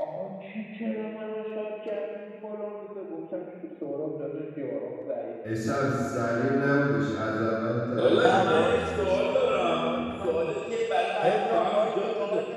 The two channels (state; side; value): identical; both; correlation 1.00